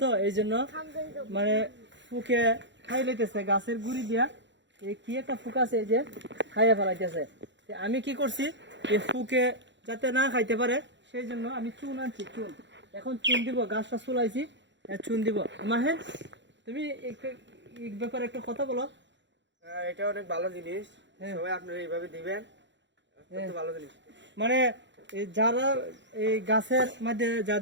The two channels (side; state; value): left; late; 0.53 ms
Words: তো এই জন্য মানে ফুকে খাই লইতেছে গাছের গুড়ি দিয়া। এই কি একটা ফুক আছে এই যে খাইয়া ফেলাইতেছে। আমি কি করছি, এই ফুকে যাতে না খাইতে পারে সেই জন্য আমি চুন আনছি, চুন। এখন চুন দিব, গাছটা চুলাইছি, চুন দিব। মাহেন তুমি এই ব্যাপারে একটা কথা বলো। এটা অনেক ভালো জিনিস, সবাই আপনারা এইভাবে দিবেন, অত্যন্ত ভালো জিনিস। মানে যারা এই গাছের মধ্যে